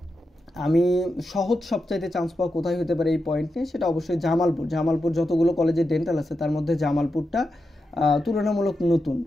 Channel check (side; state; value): both; normal; correlation 0.88